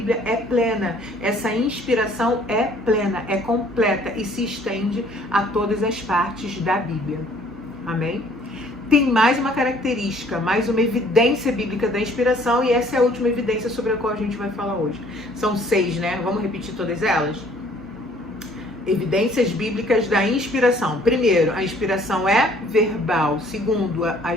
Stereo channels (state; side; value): normal; both; correlation 0.58